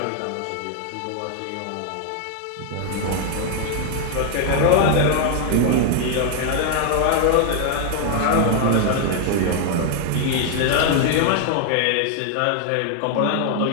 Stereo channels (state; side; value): different; both; correlation 0.00